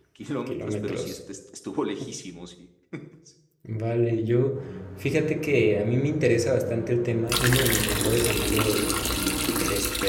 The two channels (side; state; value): both; identical; correlation 1.00